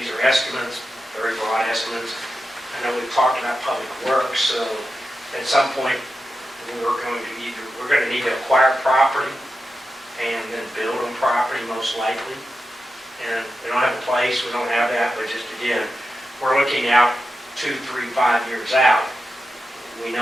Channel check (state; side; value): normal; both; correlation 0.91